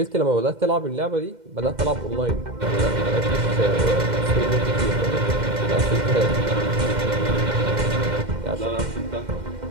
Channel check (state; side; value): late; left; 2.1 ms